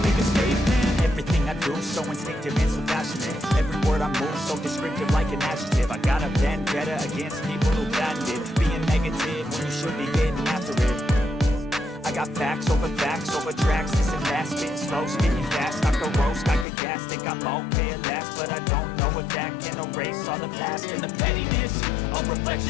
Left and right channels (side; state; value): right; drops out; at 16.7 s